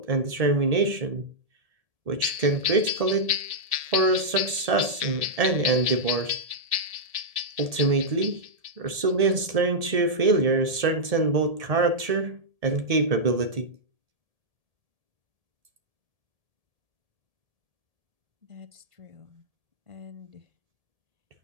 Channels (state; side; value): late; left; 1.7 ms